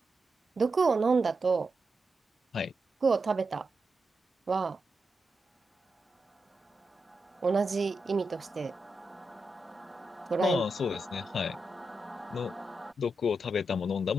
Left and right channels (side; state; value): both; normal; correlation 0.87